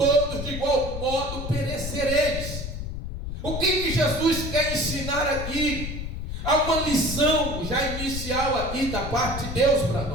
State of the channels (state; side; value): noise; left; rumble, 6 dB below the sound